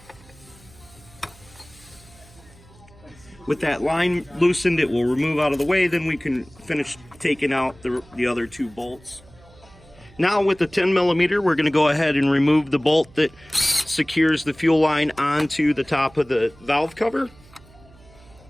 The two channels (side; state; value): right; noise; hum, 25 dB below the sound